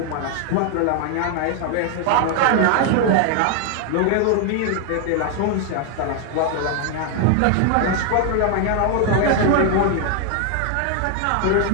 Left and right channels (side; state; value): both; different; correlation 0.00